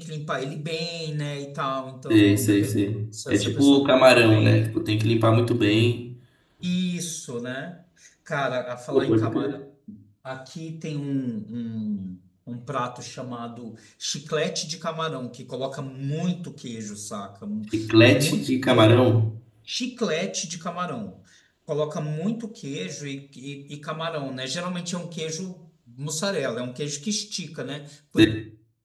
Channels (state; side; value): identical; both; correlation 1.00